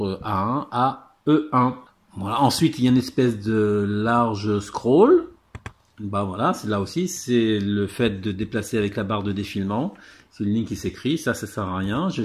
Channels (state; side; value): identical; both; correlation 1.00